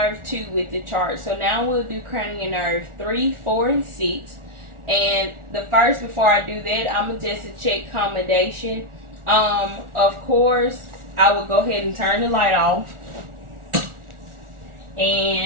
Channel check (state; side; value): late; left; 1.4 ms